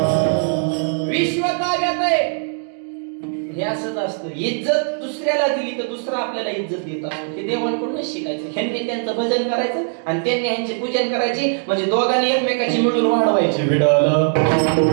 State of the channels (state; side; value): silent; left; 57 dB below the other